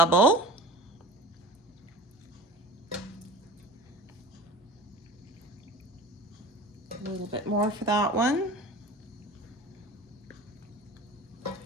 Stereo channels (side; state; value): both; normal; correlation 0.39